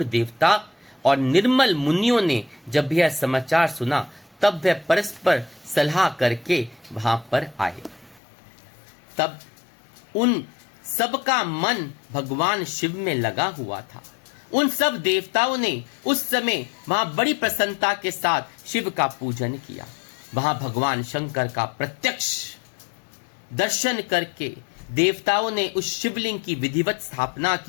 देवता और निर्मल मुनियों ने जब यह समाचार सुना, तब वह परस्पर सलाह करके वहां पर आए। तब उन सबका मन भगवान शिव में लगा हुआ था। उन सब देवताओं ने उस समय वहां बड़ी प्रसन्नता के साथ शिव का पूजन किया। वहां भगवान शंकर का प्रत्यक्ष दर्शन करके देवताओं ने उस शिवलिंग की विधिवत स्थापना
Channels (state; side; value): drops out; right; at 8.2 s